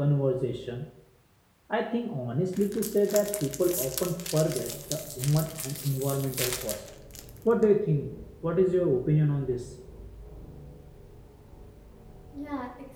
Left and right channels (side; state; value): both; identical; correlation 1.00